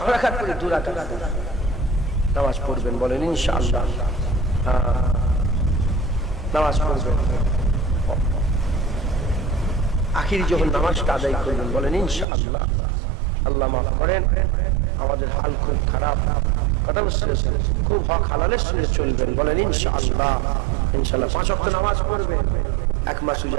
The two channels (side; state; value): left; drops out; at 12.2 s